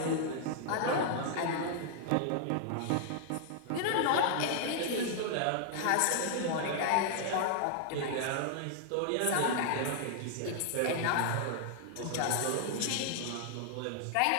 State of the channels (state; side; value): different; both; correlation -0.01